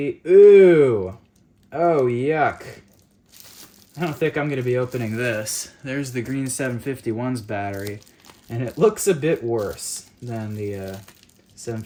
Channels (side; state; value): both; identical; correlation 1.00